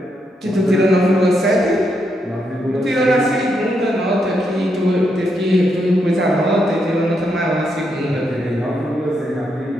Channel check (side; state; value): both; normal; correlation 0.80